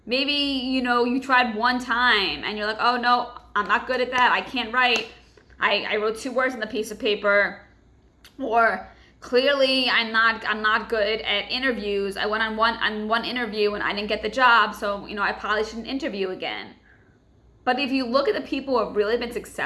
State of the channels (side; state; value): both; identical; correlation 1.00